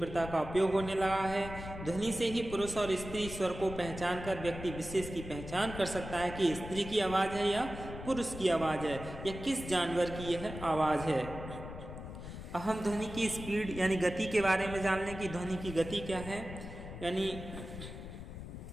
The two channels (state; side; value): noise; left; rumble, 10 dB below the sound